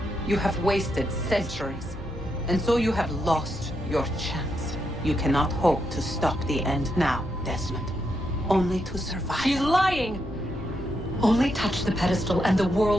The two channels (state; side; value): normal; both; correlation 0.81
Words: You have wasted centuries, and so you have lost your chance. You cannot hope to stop the end now, Desmond. Only to survive. She's lying! Only touch the pedestal and the